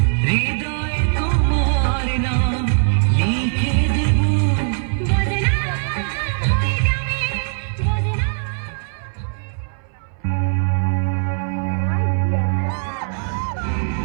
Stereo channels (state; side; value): silent; left; 61 dB below the other